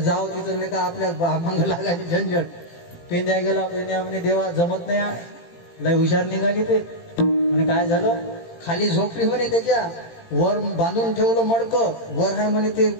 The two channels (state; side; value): late; right; 18 ms